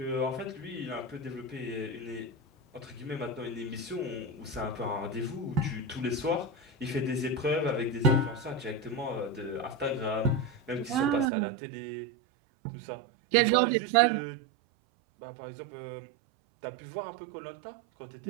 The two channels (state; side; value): drops out; left; at 11.3 s